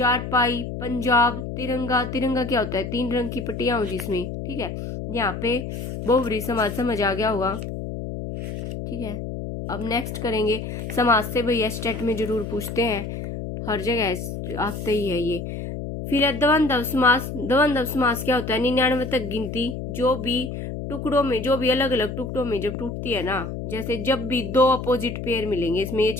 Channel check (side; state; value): left; noise; hum, 6 dB below the sound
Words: पंजाब, तिरंगा, तिरंगा क्या होता है, 3 रंग की पट्टियां हो जिसमें, ठीक है। यहाँ पे बहुब्री समाज समझ आ गया होगा, ठीक है। अब नेक्स्ट करेंगे समाज से, भैया स्टेट में जरूर पूछते हैं, हर जगह आते ही है ये। फिर है द्वंद्व समास। द्वंद्व समास क्या होता है, 99 तक गिनती जो भी टुकड़ों में, जो भी अलग अलग टुकड़ों में जब टूटती है ना, जैसे जब भी 2 अपोजिट पेयर मिलेंगे, इसमें ये